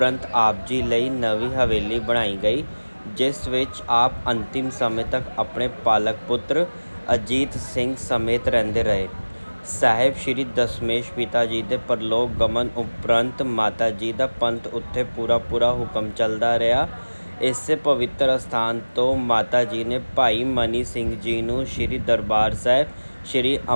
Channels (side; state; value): both; inverted; correlation -1.00